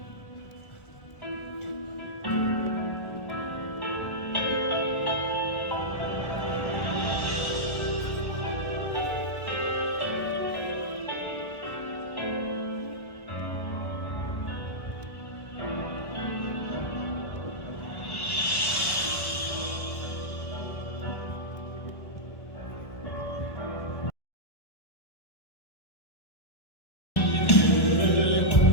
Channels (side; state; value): right; late; 1.1 ms